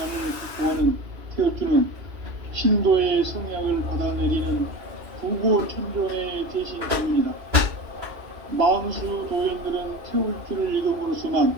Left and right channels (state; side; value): late; left; 2.5 ms